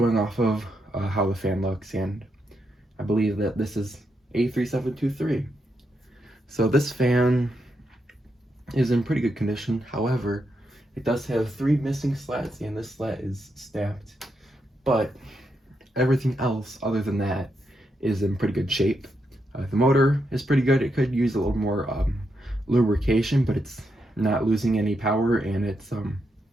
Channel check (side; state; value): both; normal; correlation 0.82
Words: off of how the fan looks, and I believe that this is a 3723. So this fan is in pretty good condition. However, it does have 3 missing slats, and this slat is snapped, but everything else other than that is in pretty good shape. The motor is pretty good. It could use a little more lubrication, but it's not losing any power, and it's